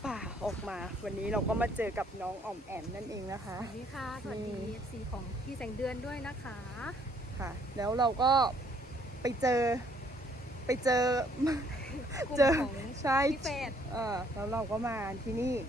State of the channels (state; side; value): normal; both; correlation 0.64